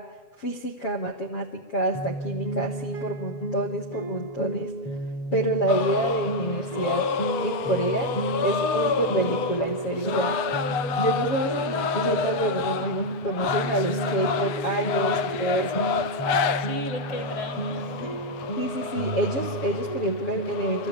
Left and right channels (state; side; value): late; right; 8.1 ms